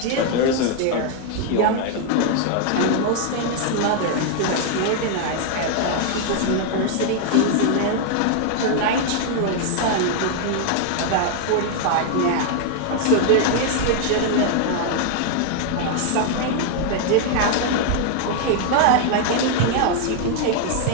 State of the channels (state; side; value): different; both; correlation 0.00